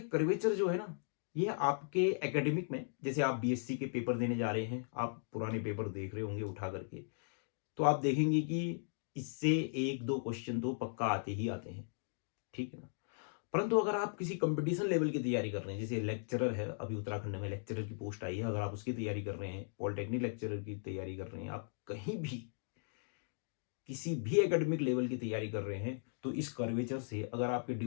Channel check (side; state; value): right; silent; digital silence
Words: कर्वेचर जो है ना, ये आपके एकेडमिक में, जैसे आप बीएससी के पेपर देने जा रहे हैं, आप पुराने पेपर देख रहे होंगे उठा करके, तो आप देखेंगे कि इससे एक दो क्वेश्चन तो पक्का आते ही आते हैं। ठीक है ना। परंतु अगर आप किसी कंपटीशन लेवल की तैयारी कर रहे हैं, जैसे लेक्चरर है, अभी उत्तराखंड में लेक्चरर की पोस्ट आई है, अगर आप उसकी तैयारी कर रहे हैं, पॉलिटेक्निक लेक्चरर की तैयारी कर रहे हैं, आप कहीं भी किसी भी एकेडमिक लेवल की तैयारी कर रहे हैं, तो इस कर्वेचर से, अगर आपके